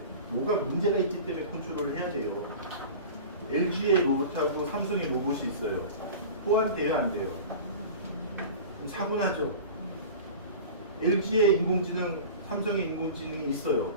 뭐가 문제가 있기 때문에 컨트롤을 해야 돼요. LG의 로봇하고 삼성의 로봇이 있어요. 호환돼요, 안 돼요? 그럼 사고 나죠. LG의 인공지능, 삼성의 인공지능이 있어요.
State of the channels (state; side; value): inverted; both; correlation -0.36